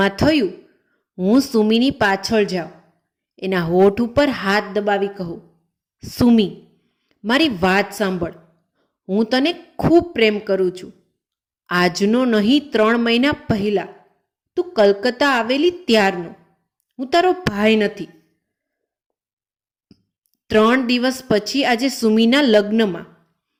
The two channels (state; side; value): identical; both; correlation 1.00